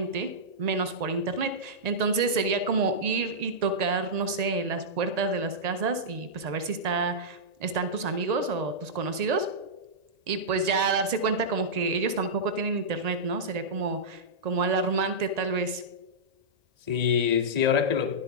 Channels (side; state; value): left; late; 1.9 ms